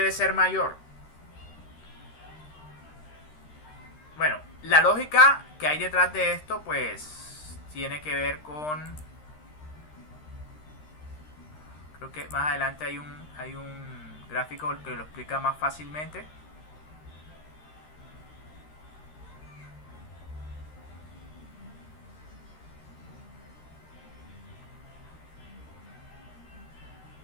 ser mayor? Bueno, la lógica que hay detrás de esto pues tiene que ver con, creo que más adelante hay un gráfico que lo explica más fácilmente.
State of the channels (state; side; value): late; right; 13 ms